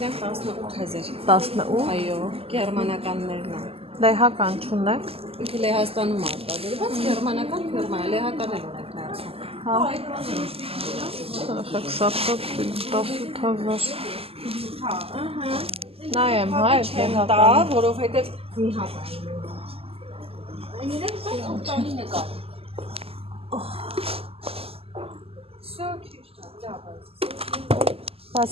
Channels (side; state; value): left; late; 0.28 ms